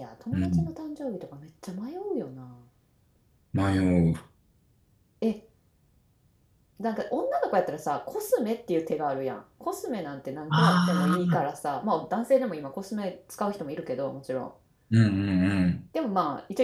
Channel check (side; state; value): both; identical; correlation 1.00